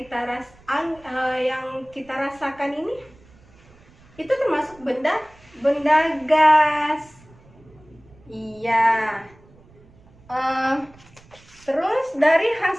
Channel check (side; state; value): right; noise; rumble, 27 dB below the sound